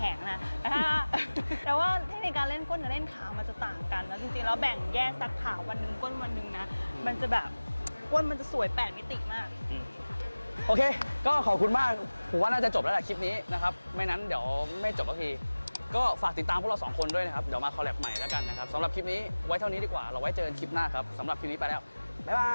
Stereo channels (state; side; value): inverted; both; correlation -1.00